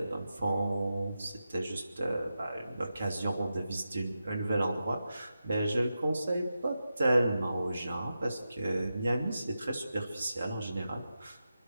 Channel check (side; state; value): both; inverted; correlation -0.90